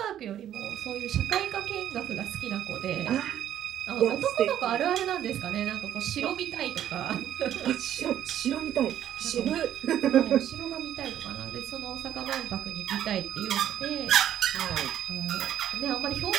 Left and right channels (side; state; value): left; quieter; 11.0 dB